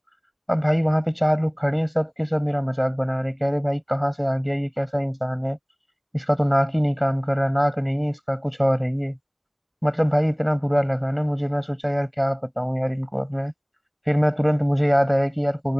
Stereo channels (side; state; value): both; identical; correlation 1.00